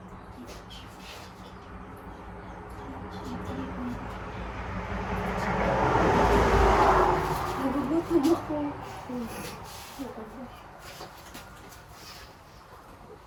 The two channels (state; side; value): identical; both; correlation 1.00